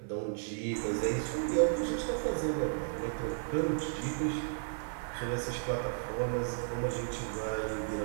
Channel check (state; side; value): silent; left; digital silence